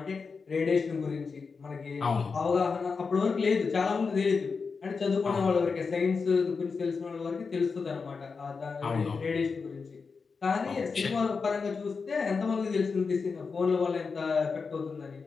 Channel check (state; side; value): quieter; right; 5.0 dB